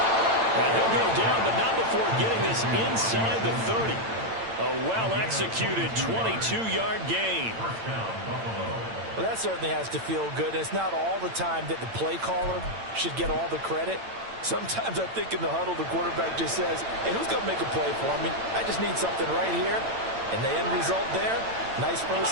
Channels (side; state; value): left; late; 8.9 ms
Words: And he'll go down, but not before getting this inside the 30. A well-executed 22-yard gain. Well, that certainly has to feel good. It's not all the time that the play caller should get all the credit. Sometimes I think in the huddle, the quarterback just says, hey, who's going to make a play for me? I just need something right here. And the end result there, nice